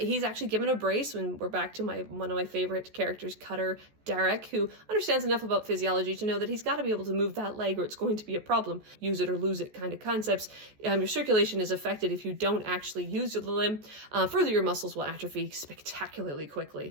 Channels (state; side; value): late; left; 14 ms